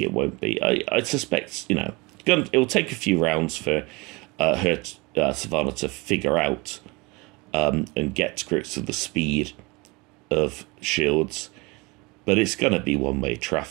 it won't be. I suspect, you know, it'll take a few rounds for Savannah to figure out and get to grips with the speed of Shields. But it's going to be one-way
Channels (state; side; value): quieter; left; 25.9 dB